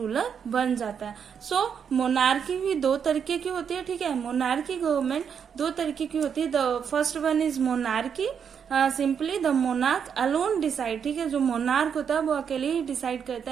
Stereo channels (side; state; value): left; quieter; 7.3 dB